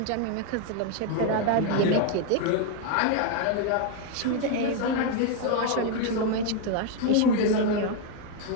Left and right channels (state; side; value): different; both; correlation 0.01